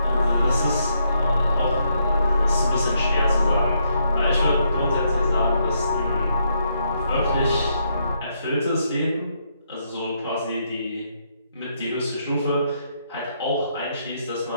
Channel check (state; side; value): inverted; both; correlation -0.76